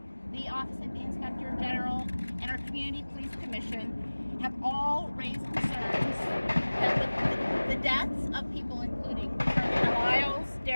the Office of the Inspector General, and our Community Police Commission have all raised concerns that the deaths of people including Carolina Lyles,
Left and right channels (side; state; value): both; inverted; correlation -1.00